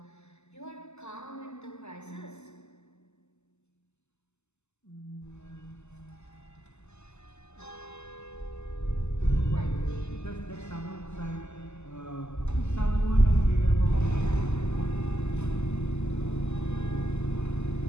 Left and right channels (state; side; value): late; right; 0.82 ms